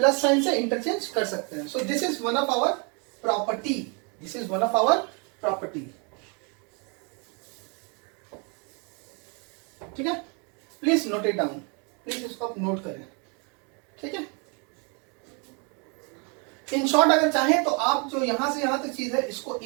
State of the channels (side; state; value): left; quieter; 34.3 dB